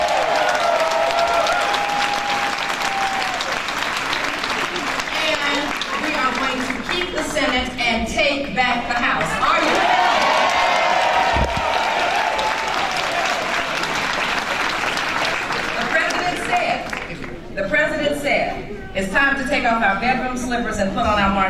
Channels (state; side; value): identical; both; correlation 1.00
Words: The Senate and take back the House. Are you ready? The president said, it's time to take off our bedroom slippers and put on our